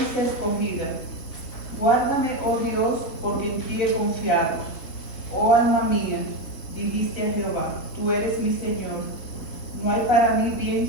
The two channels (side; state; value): right; late; 3.9 ms